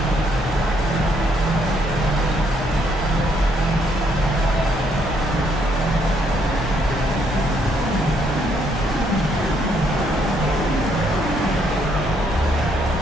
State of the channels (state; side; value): normal; both; correlation 0.71